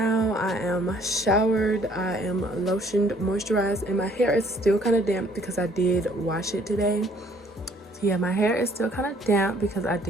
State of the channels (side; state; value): both; normal; correlation 0.61